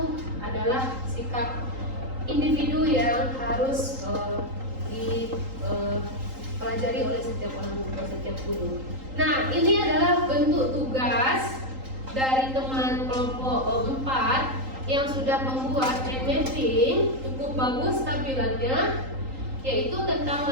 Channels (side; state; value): left; late; 3.8 ms